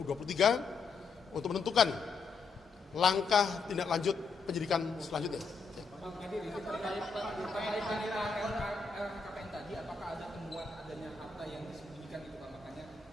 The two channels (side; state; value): right; quieter; 4.8 dB